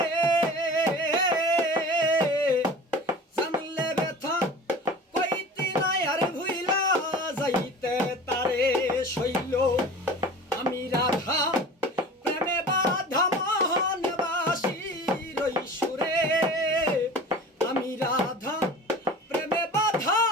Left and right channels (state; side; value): normal; both; correlation 0.39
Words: জানলে ব্যথা কইতি না আর ভুইলা যাইতে তারে, শৈল আমি রাধা প্রেমে বাধা মোহনবাসীর ওই সুরে, আমি রাধা প্রেমে বাধা